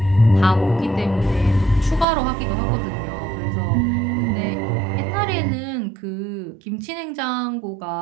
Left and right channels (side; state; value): left; drops out; at 2.1 s